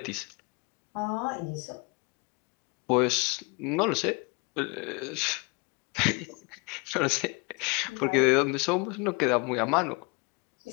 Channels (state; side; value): quieter; right; 28.8 dB